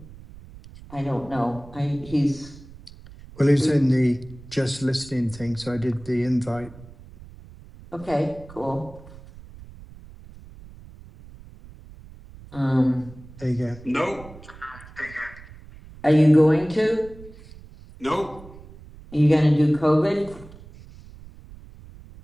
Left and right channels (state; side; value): noise; right; rumble, 19 dB below the sound